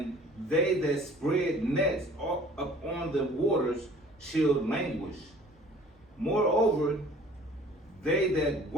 they that spread nets upon the waters shall languish. Moreover, they that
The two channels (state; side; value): normal; both; correlation 0.50